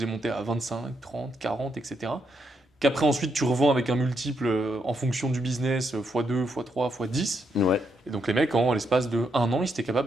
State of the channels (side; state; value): both; normal; correlation 0.79